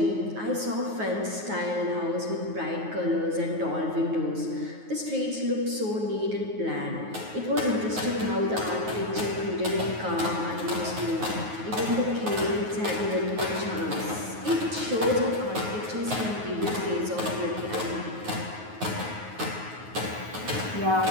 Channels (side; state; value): left; late; 9.4 ms